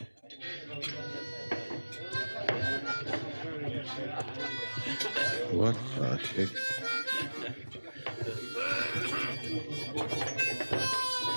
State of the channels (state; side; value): inverted; both; correlation -1.00